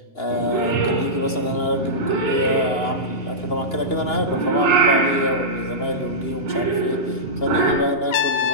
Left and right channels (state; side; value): late; right; 2.9 ms